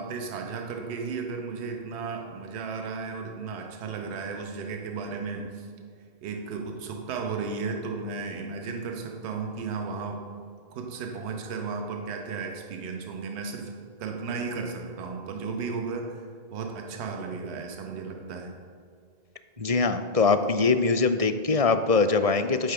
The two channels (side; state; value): left; late; 1.6 ms